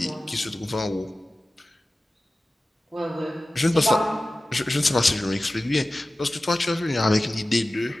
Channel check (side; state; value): both; normal; correlation 0.96